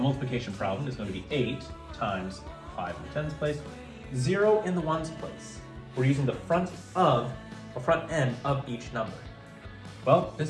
problem is going to be 8 times 5 in the tens place, 0 in the ones place. We're using the front end of each number. Well,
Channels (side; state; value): both; identical; correlation 1.00